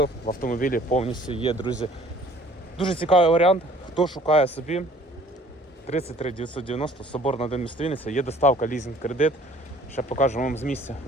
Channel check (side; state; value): both; normal; correlation 0.54